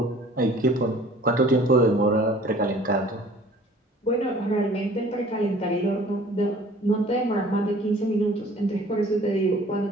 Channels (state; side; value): normal; both; correlation 0.51